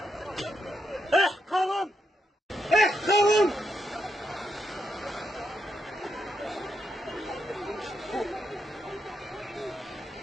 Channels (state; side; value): normal; both; correlation 0.81